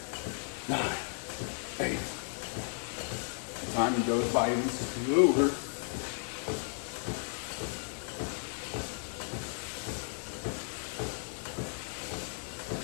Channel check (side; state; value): right; silent; 55 dB below the other